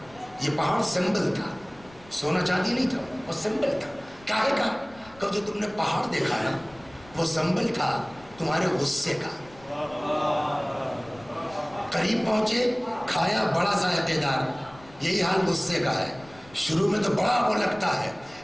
یہ پہاڑ سمبل تھا، سونا چاندی نہیں تھا، وہ سمبل تھا. کاہے کا؟ کہ جو تم نے پہاڑ دیکھا نا وہ سمبل تھا تمہارے غصے کا. قریب پہنچے، کھایا بڑا ذائقے دار. یہی حال غصے کا ہے، شروع میں تو بڑا وہ لگتا ہے،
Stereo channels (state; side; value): noise; left; rumble, 24 dB below the sound